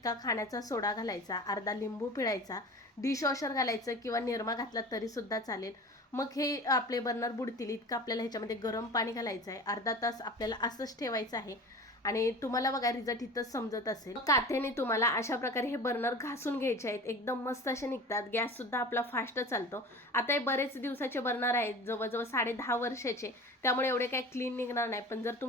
खाण्याचा सोडा घालायचा, अर्धा लिंबू पिळायचा, डिशवॉशर घालायचं किंवा निरमा घातला तरीसुद्धा चालेल. मग हे आपले बर्नर बुडतील इतकं आपल्याला ह्याच्यामध्ये गरम पाणी घालायचं आहे. अर्धा तास आपल्याला असंच ठेवायचं आहे आणि तुम्हाला बघा रिझल्ट इथंच समजत असेल. काथ्याने तुम्हाला अशा प्रकारे हे बर्नर घासून घ्यायचे आहेत, एकदम मस्त असे निघतात. गॅस सुद्धा आपला फास्ट चालतो. आता हे बरेच दिवसाचे बर्नर आहेत, जवळजवळ 10.5 वर्षाचे, त्यामुळे एवढे काही क्लीन निघणार नाही. पण जर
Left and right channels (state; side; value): normal; both; correlation 0.37